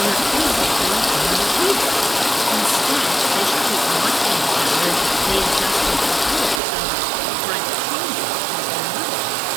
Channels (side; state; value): left; drops out; at 6.6 s